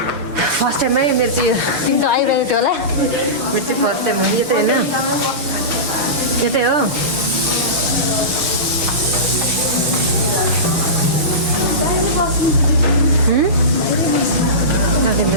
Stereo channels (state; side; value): late; left; 6.4 ms